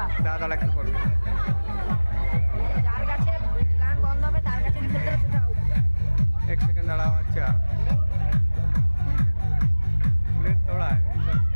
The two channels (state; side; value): inverted; both; correlation -1.00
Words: দাঁড়া একটু পরে। যার কাছে গান বন্ধ হবে তার কাছে খেলতে হবে, সেটা out। এক সেকেন্ড দাঁড়াও। আচ্ছা বুলেট তোড়া